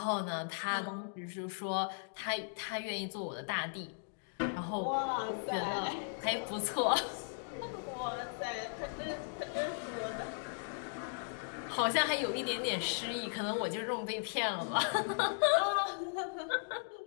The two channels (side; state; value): right; silent; digital silence